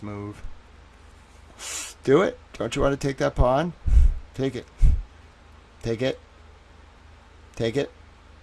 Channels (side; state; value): both; identical; correlation 1.00